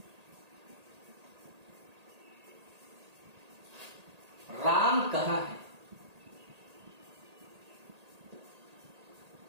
राम कहां है?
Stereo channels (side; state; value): left; late; 1.8 ms